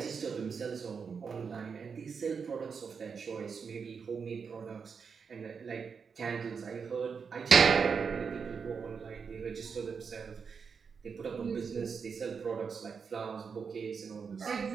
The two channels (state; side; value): quieter; left; 5.9 dB